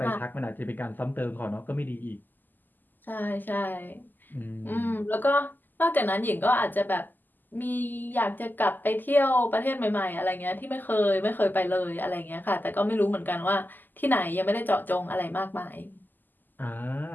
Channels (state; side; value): late; right; 0.088 ms